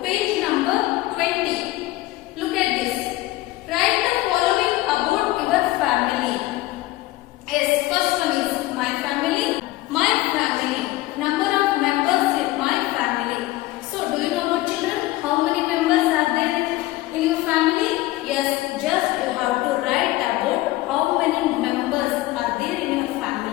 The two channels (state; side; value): quieter; right; 17.7 dB